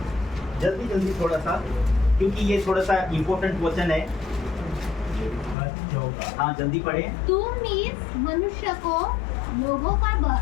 जल्दी जल्दी थोड़ा सा, क्योंकि ये थोड़ा सा इम्पोर्टेंट वचन है। हाँ जल्दी पढ़े। तुम इस मनुष्य को लोगों का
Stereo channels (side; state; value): right; drops out; at 5.6 s